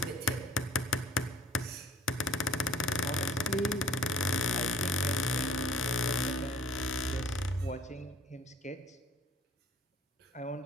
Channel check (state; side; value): normal; both; correlation 0.51